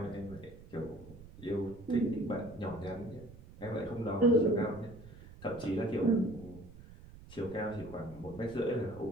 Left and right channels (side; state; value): right; noise; rumble, 18 dB below the sound